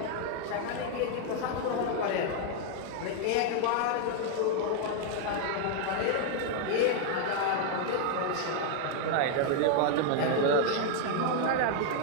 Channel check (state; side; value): different; both; correlation 0.00